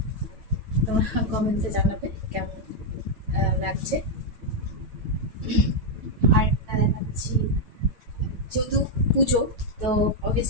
তোমরা কমেন্টে জানাবে কেমন লাগছে। আর একটা দেখাচ্ছি, যেহেতু পুজো তো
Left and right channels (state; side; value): late; left; 9.0 ms